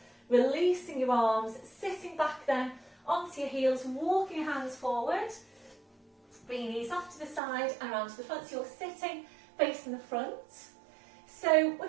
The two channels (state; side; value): drops out; left; at 7.4 s